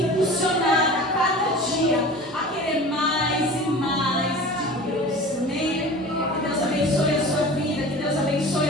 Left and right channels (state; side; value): normal; both; correlation 0.38